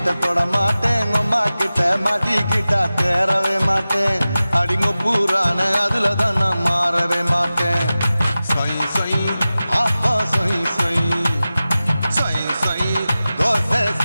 வீட்டை தொட மாட்டேன் அம்மா கிட்ட மாட்டிக்கிட்டா தேரவே மாட்டேன் அடிங்க பூரான அதுல தான் நான் மாறவே மாட்டேன் சொய் சொய் அப்பா சொய் சொய் சொய் சொய் தோசை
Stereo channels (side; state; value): both; inverted; correlation -0.96